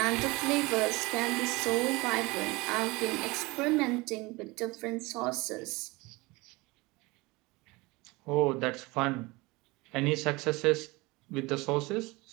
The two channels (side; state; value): left; quieter; 23.4 dB